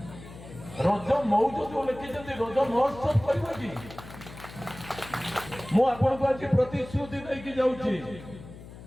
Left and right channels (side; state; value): left; noise; hum, 16 dB below the sound